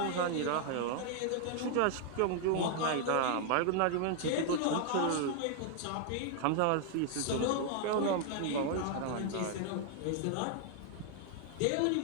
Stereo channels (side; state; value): both; different; correlation 0.00